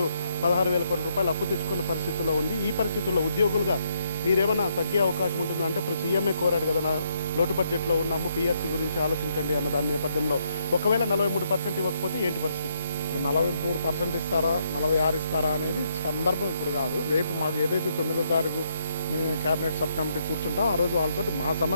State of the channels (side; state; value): both; inverted; correlation -0.75